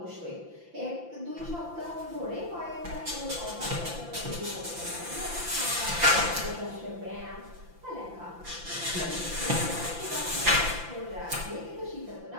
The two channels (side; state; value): left; late; 5.9 ms